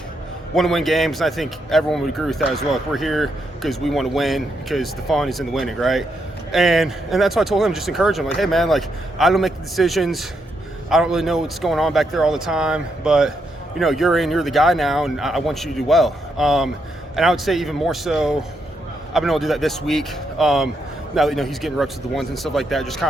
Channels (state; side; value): normal; both; correlation 0.79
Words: to win games, and I think everyone would agree with that as well. We're here because we want to win, because the fun is in the winning, right? And that's why I told him, just encourage him, hey man, I don't make the decisions. I don't really know what's going on back there all the time, but you're the guy now, and I want you to do well. And I would say even more so, I've been able to do that this week. Now that he's getting reps with the ones and stuff like that, just